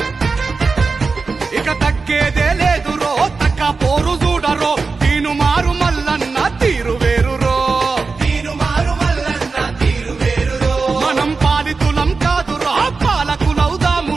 ఇక తగ్గేదే లేదురో తక్క పోరు చూడరో తీను మారు మల్లన్న తీరు వేరురో మనం పాలితులం కాదురో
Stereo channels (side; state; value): left; quieter; 4.3 dB